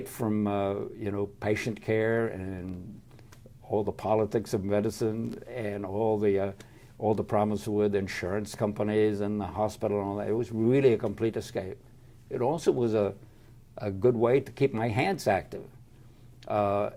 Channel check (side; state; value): both; identical; correlation 1.00